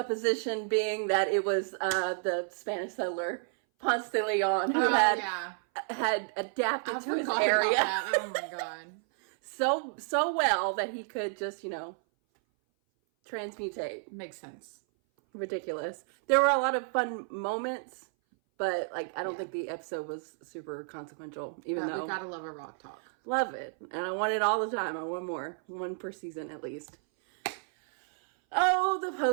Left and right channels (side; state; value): left; silent; 57 dB below the other